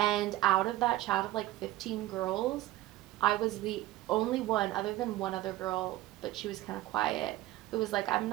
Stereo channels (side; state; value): left; quieter; 16.1 dB